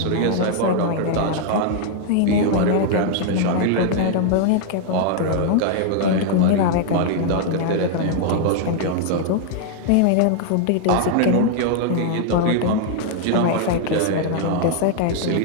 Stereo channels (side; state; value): both; different; correlation 0.00